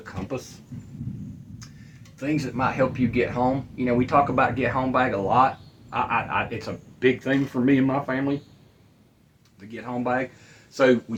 things that might help you get home. You know, we talk about get home bag a lot. It's a big thing for me and my family, the get home bag. So we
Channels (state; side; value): identical; both; correlation 1.00